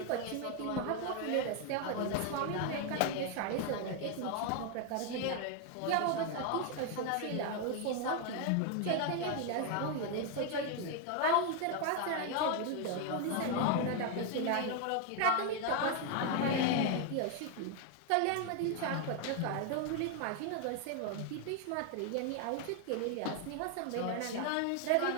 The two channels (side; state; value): both; different; correlation 0.01